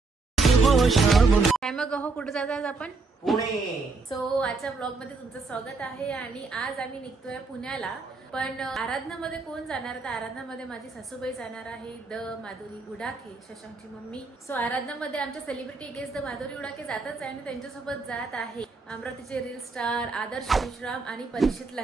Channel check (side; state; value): left; quieter; 4.0 dB